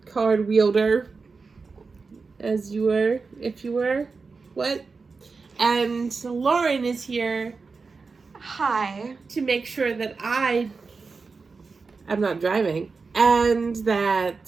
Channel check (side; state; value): left; quieter; 4.5 dB